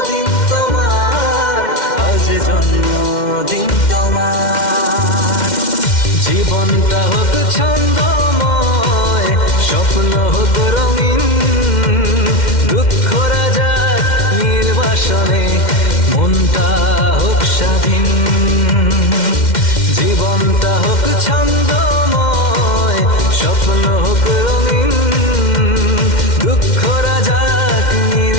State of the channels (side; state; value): right; late; 2.1 ms